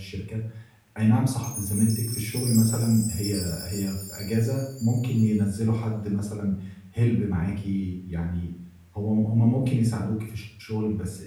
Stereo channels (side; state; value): both; identical; correlation 1.00